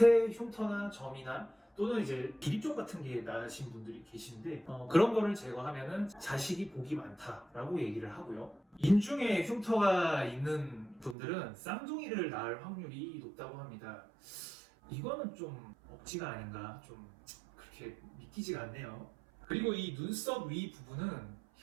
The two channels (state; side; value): drops out; left; at 11.2 s